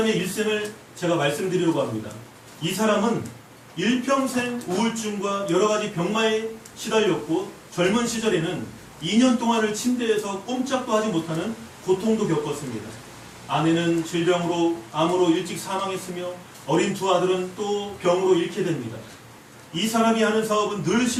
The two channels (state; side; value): identical; both; correlation 1.00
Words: 일생을 제가 말씀드리려고 합니다. 이 사람은 일평생 우울증과 여러가지 병마에 시달렸고, 젊은 시절에는 2년 동안을 침대에서 꼼짝도 하지 못하는 고통도 겪었습니다. 아내는 질병으로, 암으로 일찍 사망했으며 어린 두 아들은 또 병으로 잃게 됩니다. 이 사람이 하는 사업은 늘